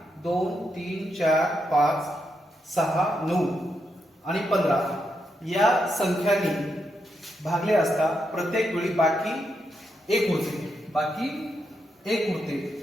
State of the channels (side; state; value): both; normal; correlation 0.82